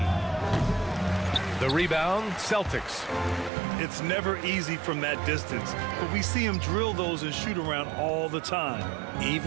The rebound, Celtics. It's never easy from that distance, but we see him drill those and shoot around all the time.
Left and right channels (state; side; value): drops out; left; at 3.5 s